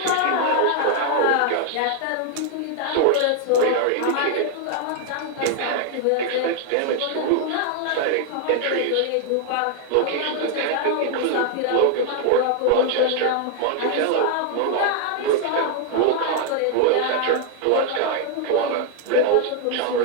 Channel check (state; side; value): different; both; correlation 0.00